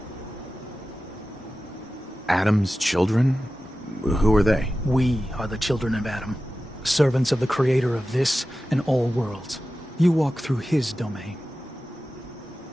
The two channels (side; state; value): both; normal; correlation 0.94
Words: Adam's children? Who are they? We are the children of Adam. Servants of the creator of this and all worlds. You walk through his domain.